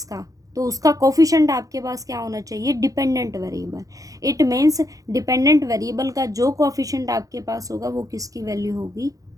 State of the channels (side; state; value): left; late; 0.17 ms